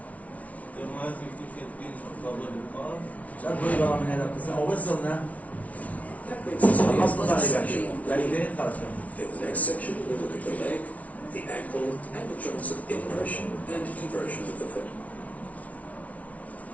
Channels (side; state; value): right; late; 0.068 ms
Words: شو أقول برا من هذا القسم؟ أو وصلنا That brings us to the الأصل last تقريبا، section. تقريبا خرج. In the next section, we'll look at the leg, the ankle, and the joints of inversion and eversion of the foot.